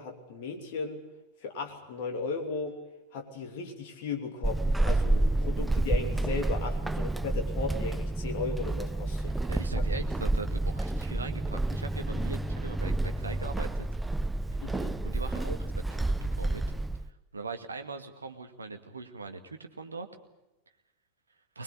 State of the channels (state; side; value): normal; both; correlation 0.73